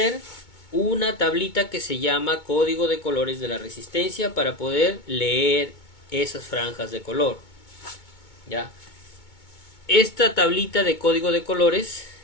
una tablita que se llama código de colores de la resistencia para poder leer esas franjas de color. ¿Ya? Esta tablita de código de colores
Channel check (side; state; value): right; late; 2.2 ms